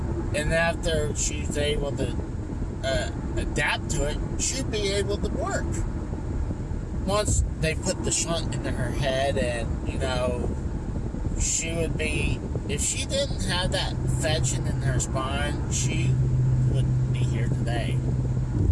And after she's able to adapt to it, she'd be able to work. Once they put the shunt into her head and, she would be, if she didn't have that infection in her spine, she wouldn't be here today.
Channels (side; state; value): both; identical; correlation 1.00